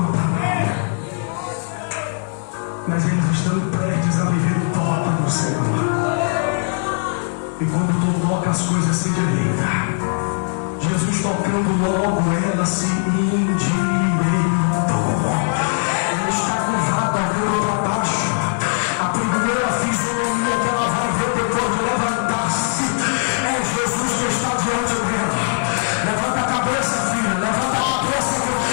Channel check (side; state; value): right; silent; 66 dB below the other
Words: palavra. Mas eles estão prestes a viver o toque do Senhor. E quando tu toca, as coisas se endireitam. Jesus tocando logo, ela se endireitou. Ela está com